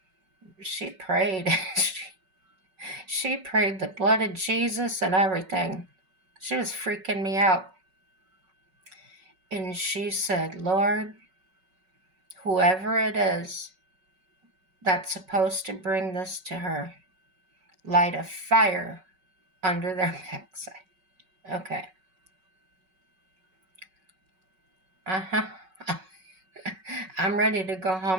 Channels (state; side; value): late; left; 5.3 ms